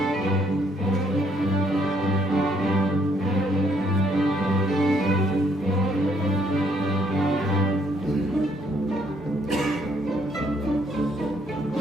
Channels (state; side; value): normal; both; correlation 0.68